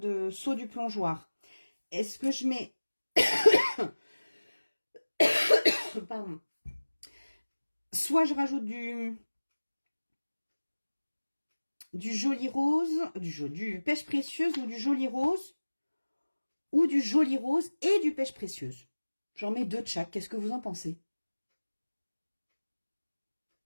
saut du plongeoir? Est-ce que je mets... Pardon. Soit je rajoute du joli rose, du pêche précieuse ou du joli rose, ou du joli rose et du pêche précieuse. J'en mets 2 de chaque. Qu'est-ce que vous en pensez?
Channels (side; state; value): both; inverted; correlation -1.00